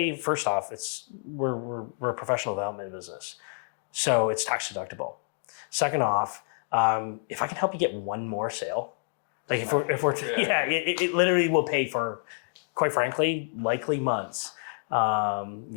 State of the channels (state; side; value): silent; right; digital silence